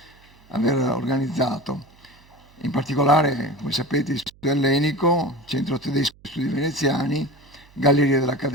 aver organizzato. In particolare, come sapete, l'Istituto Ellenico, Centro Tedesco di Studi Veneziani, Galleria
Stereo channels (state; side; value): noise; right; hum, 27 dB below the sound